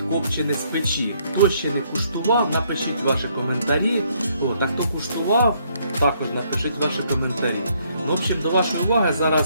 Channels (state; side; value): inverted; both; correlation -0.69